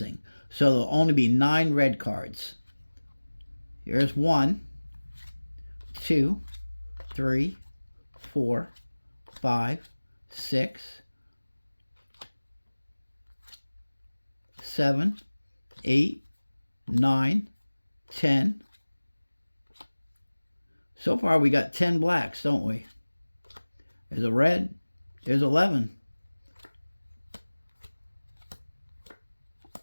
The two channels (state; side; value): inverted; both; correlation -1.00